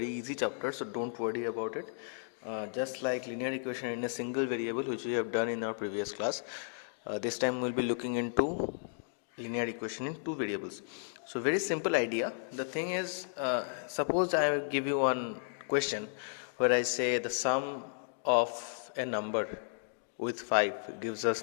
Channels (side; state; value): right; silent; digital silence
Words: easy chapter, so don't worry about it. Just like linear equation in a single variable which we have done in our previous class, this time we'll be looking into linear equation in two variables. So very simple idea. The thing is, suppose I give you one question where I say the sum of a number with 5 gives